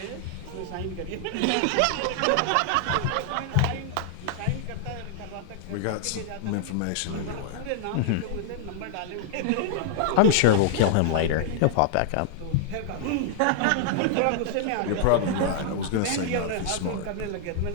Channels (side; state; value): both; different; correlation -0.01